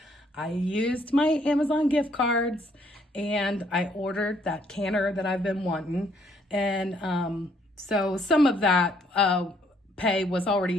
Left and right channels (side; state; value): both; normal; correlation 0.67